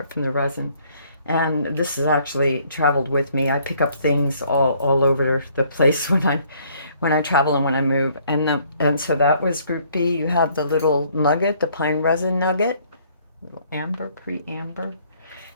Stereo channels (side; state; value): both; inverted; correlation -0.63